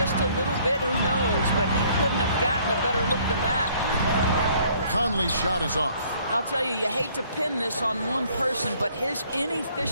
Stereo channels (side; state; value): both; inverted; correlation -0.61